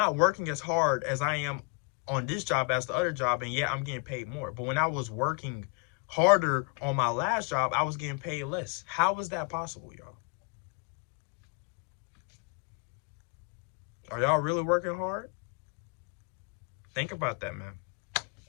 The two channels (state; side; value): quieter; right; 33.5 dB